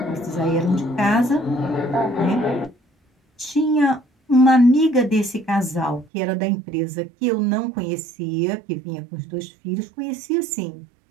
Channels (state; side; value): drops out; left; at 6.1 s